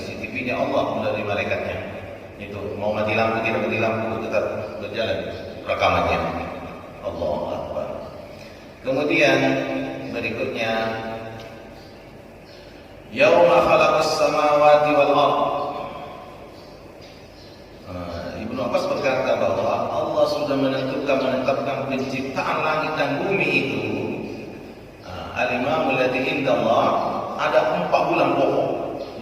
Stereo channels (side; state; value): both; identical; correlation 1.00